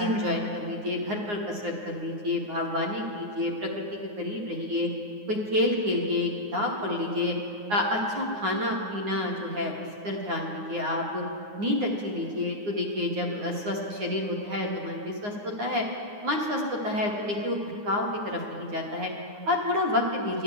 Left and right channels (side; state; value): left; late; 9.7 ms